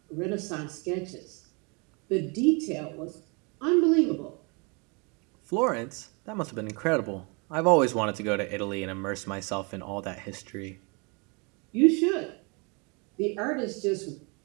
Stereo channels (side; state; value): left; quieter; 31.6 dB